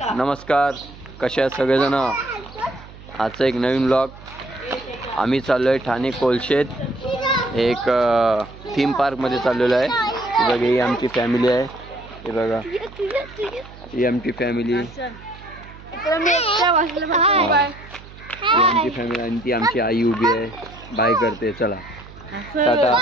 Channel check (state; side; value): noise; right; hum, 18 dB below the sound